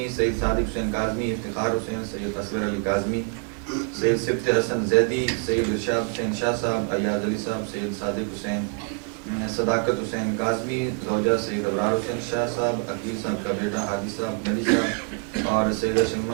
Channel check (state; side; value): quieter; left; 38.3 dB